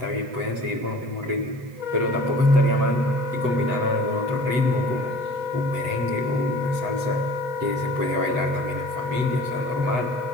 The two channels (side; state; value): left; late; 7.9 ms